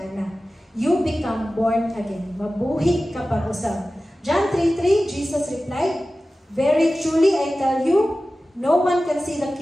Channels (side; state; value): both; normal; correlation 0.95